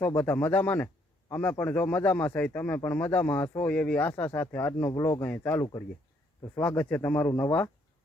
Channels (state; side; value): normal; both; correlation 0.69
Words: બધા મજામાં ને? અમે પણ જો મજામાં છે, તમે પણ મજામાં હશો એવી આશા સાથે આજનો વ્લોગ અહીં ચાલુ કરીએ। તો સ્વાગત છે તમારું નવા